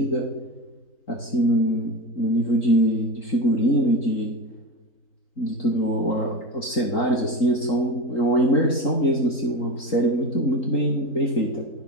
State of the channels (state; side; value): late; right; 3.8 ms